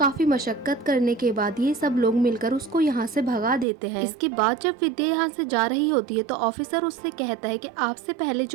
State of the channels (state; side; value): drops out; left; at 3.7 s